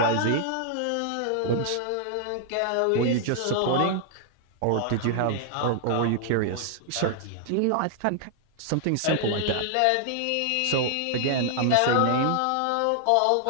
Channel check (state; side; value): different; both; correlation 0.00